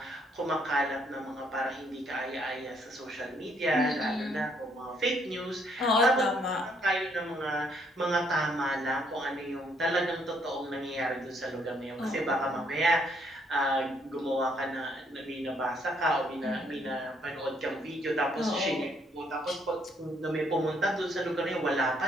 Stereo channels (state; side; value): normal; both; correlation 0.69